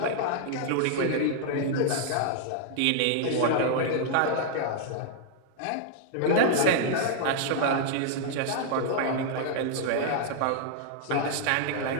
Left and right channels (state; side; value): different; both; correlation -0.01